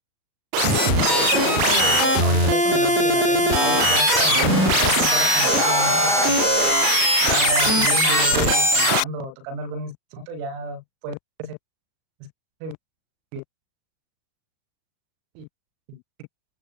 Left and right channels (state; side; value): late; left; 37 ms